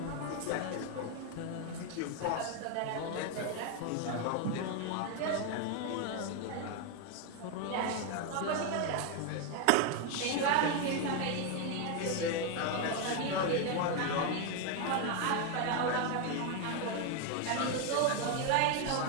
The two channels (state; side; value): different; both; correlation 0.01